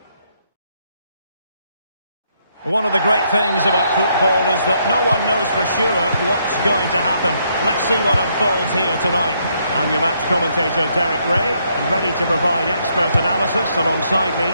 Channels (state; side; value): inverted; both; correlation -0.73